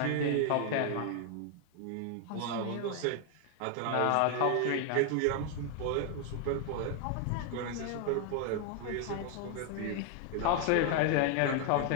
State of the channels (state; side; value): different; both; correlation 0.00